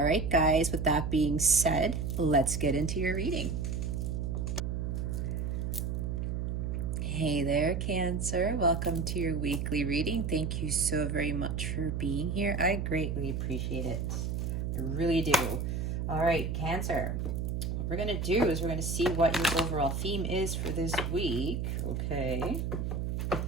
right, guys, with that being said, let's get into your reading. Hey there, Cancer. Welcome to your weekly reading. Thank you so very much for being here. I greatly appreciate it. I really do. All right, Cancer. What we're going to do is we're going to see what your overall theme is for this week. Okay.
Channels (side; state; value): right; noise; hum, 1 dB below the sound